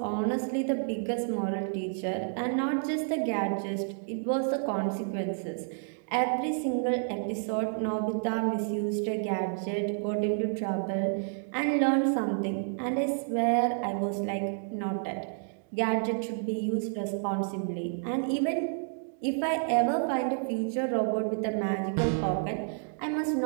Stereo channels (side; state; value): left; silent; digital silence